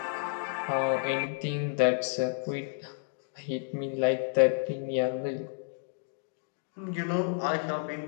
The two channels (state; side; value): silent; right; digital silence